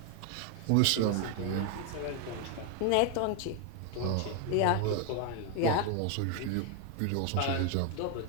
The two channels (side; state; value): both; different; correlation 0.01